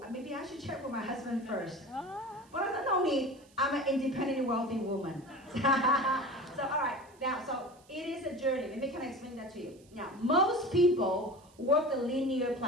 maybe I should check with my husband first. But I said, no need. I'm an independent, wealthy woman. So, all right. Now, so it is a journey. Let me kind of explain that to you. Now, most people work the linear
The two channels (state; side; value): noise; right; hiss, 29 dB below the sound